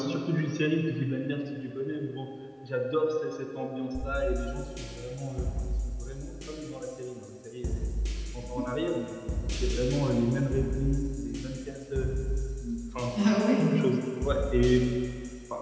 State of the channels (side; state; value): both; identical; correlation 1.00